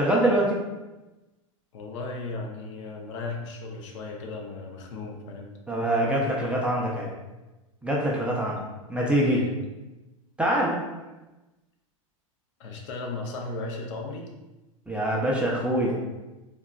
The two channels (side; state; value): both; normal; correlation 0.37